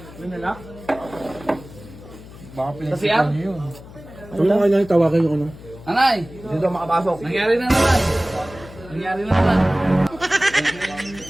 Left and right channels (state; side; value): noise; left; hum, 18 dB below the sound